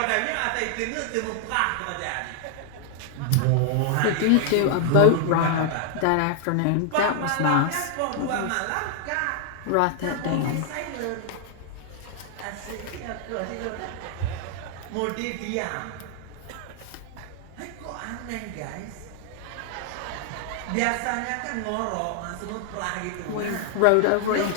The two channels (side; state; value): both; different; correlation 0.00